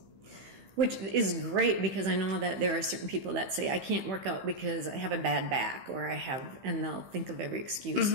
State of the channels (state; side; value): late; left; 15 ms